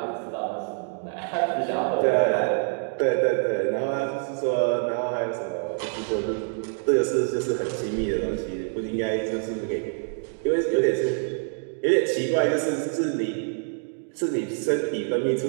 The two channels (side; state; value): left; silent; 61 dB below the other